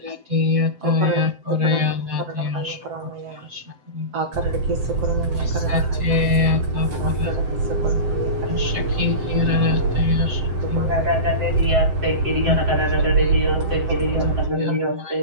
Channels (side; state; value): left; late; 7.8 ms